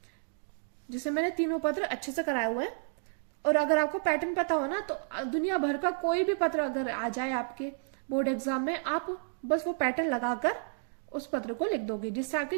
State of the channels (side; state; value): left; silent; digital silence